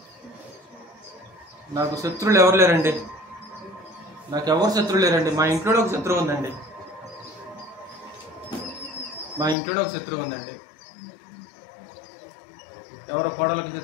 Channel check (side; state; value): right; drops out; at 9.6 s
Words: నాకు శత్రువులు ఎవరు లేరండి. నాకు ఎవరు శత్రువులు లేరండి. మా ఇంట్లో ఒక శత్రువు ఉందండి. మా ఇంట్లో ఒక శత్రువు ఉందండి. ఎవరో కోడలకు